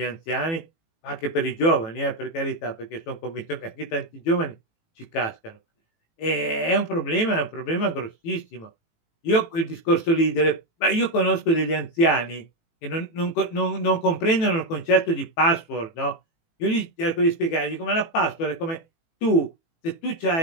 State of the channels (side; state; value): right; late; 18 ms